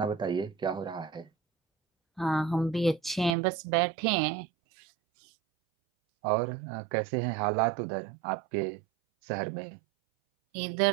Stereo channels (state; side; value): drops out; left; at 3.3 s